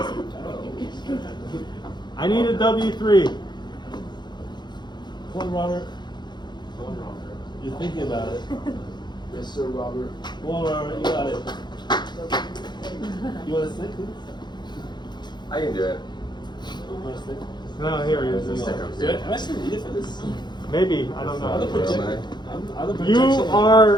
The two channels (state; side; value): late; right; 0.21 ms